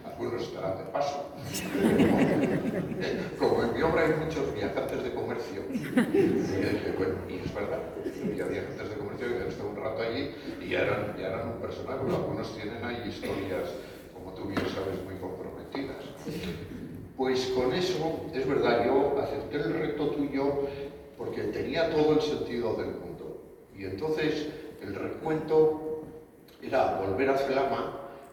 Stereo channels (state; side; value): identical; both; correlation 1.00